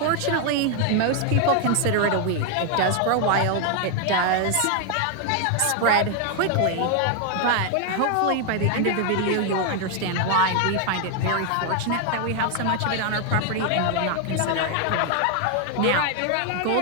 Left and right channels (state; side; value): different; both; correlation 0.00